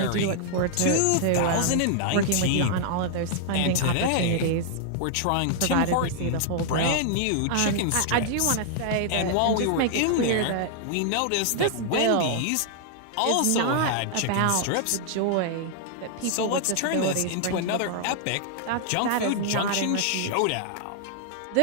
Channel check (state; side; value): different; both; correlation -0.01